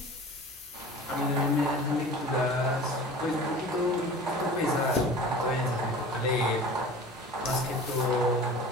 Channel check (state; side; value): normal; both; correlation 0.40